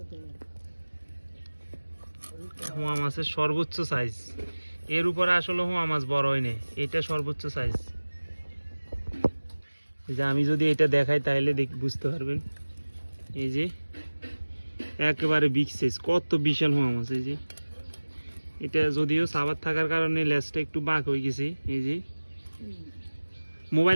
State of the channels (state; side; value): inverted; both; correlation -1.00